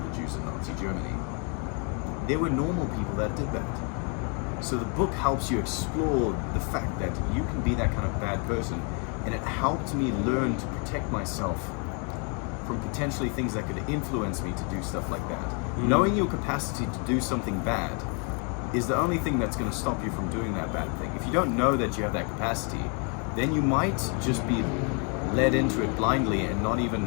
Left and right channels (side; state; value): right; quieter; 37.2 dB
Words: Jews in Nazi Germany. There were normal people that did that. So the book helps you explore the fact that you can be that kind of bad person, and it helped me learn to protect myself from potentially things that could influence me to do stuff like that. Knowing your capacity to do something bad is the only thing that's going to stop you from doing that bad thing. If you don't know that you have that capacity, then you might just be led into it blindly and not even